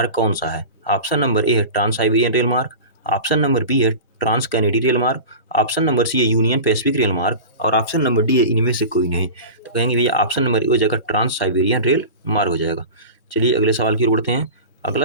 कौन सा है? ऑप्शन नंबर ए है ट्रांस साइबेरियन रेल मार्ग, ऑप्शन नंबर बी है ट्रांस कैनेडी रेल मार्ग, ऑप्शन नंबर सी है यूनियन पैसिफिक रेल मार्ग और ऑप्शन नंबर डी है इनमें से कोई नहीं। तो कहेंगे भैया ऑप्शन नंबर ए हो जाएगा ट्रांस साइबेरियन रेल मार्ग हो जाएगा। चलिए अगले सवाल की ओर बढ़ते हैं।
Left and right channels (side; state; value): both; inverted; correlation -0.32